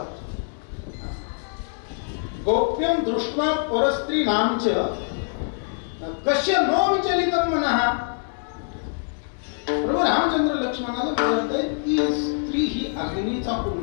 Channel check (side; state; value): right; silent; digital silence